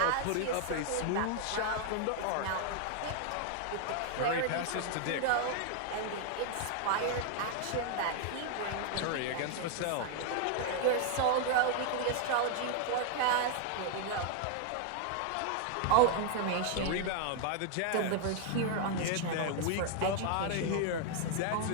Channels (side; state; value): both; different; correlation 0.00